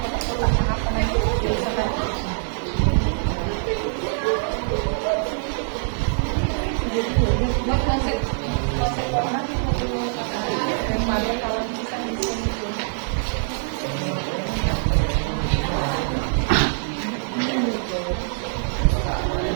apa nanti biasakan. Buat konsep orang daripada kalau bisa di sini.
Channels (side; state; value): left; silent; digital silence